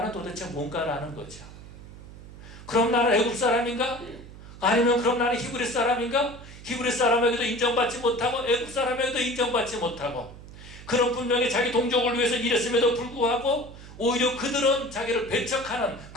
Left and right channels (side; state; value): right; noise; hum, 16 dB below the sound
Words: 도대체 뭔가라는 거죠. 그럼 나는 애굽 사람인가? 아니면 그럼 나는 히브리 사람인가? 히브리 사람에게도 인정받지 못하고 애굽 사람에게도 인정받지 못하고, 그런 분명히 자기 동족을 위해서 일했음에도 불구하고 오히려 그들은 자기를 배척하는